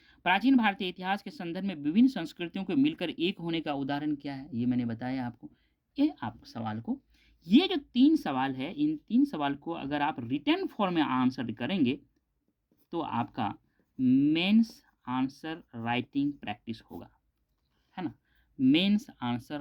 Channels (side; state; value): both; identical; correlation 1.00